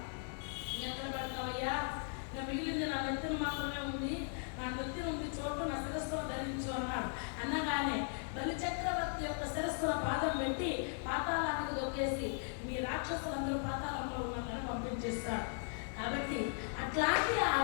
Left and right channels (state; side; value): silent; right; 52 dB below the other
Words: ఎక్కడ పెడతావయ్యా, ఇంకా మిగిలింది నా నెత్తిన మాత్రమే ఉంది, నా నెత్తిన ఉంది చోటు నా శిరస్సులో ధరించు అన్నాడు. అనగానే బలిచక్రవర్తి యొక్క శిరస్సుల పాదం పెట్టి పాతాళానికి దొక్కేసి మీ రాక్షసులందరూ పాతాళంలో ఉన్నారని పంపించేస్తాడు. కాబట్టి అట్లాంటి ఆ